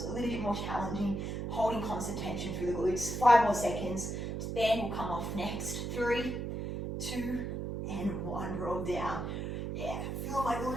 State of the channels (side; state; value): right; noise; hum, 3 dB below the sound